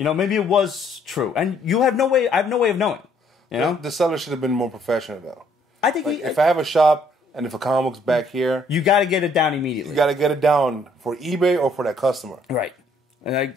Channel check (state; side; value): normal; both; correlation 0.65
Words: it was true, and I have no way of knowing. The seller should have been more professional, though. I think if I have a shop and if a comic book's back here, you got to get it down immediately. You got to get it down for eBay or for that customer, right? And